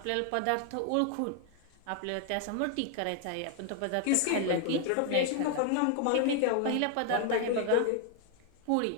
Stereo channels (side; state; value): both; different; correlation 0.00